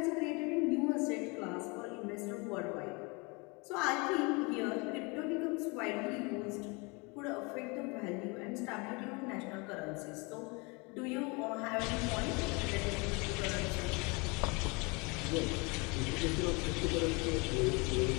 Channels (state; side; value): quieter; right; 28.8 dB